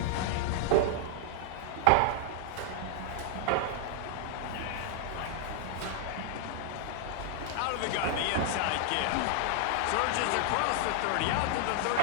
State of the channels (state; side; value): different; both; correlation -0.01